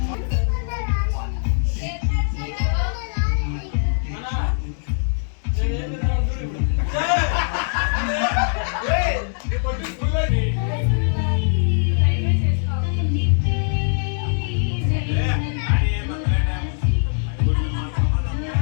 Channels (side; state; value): right; silent; 64 dB below the other